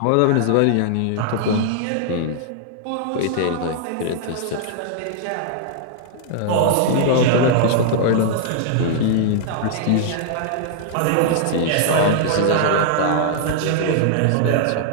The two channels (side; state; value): both; different; correlation -0.01